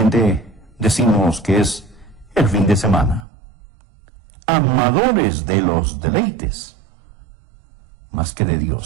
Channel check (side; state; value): left; drops out; at 3.2 s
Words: decimos que es el fin de semana. Amadores de los deleites, más que de